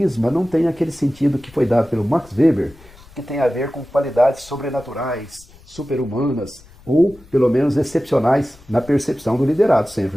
não tem aquele sentido que foi dado pelo Max Weber, que tem a ver com qualidades sobrenaturais, super-humanas, ou pelo menos excepcionais na percepção do liderado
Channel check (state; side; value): noise; left; rumble, 24 dB below the sound